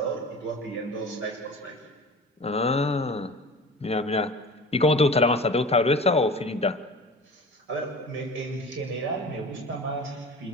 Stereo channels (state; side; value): normal; both; correlation 0.37